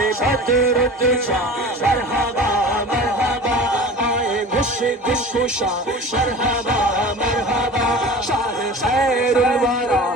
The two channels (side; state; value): both; normal; correlation 0.37